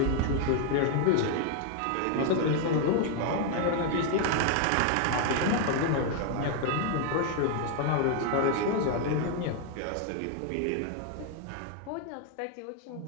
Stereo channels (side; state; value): both; different; correlation 0.00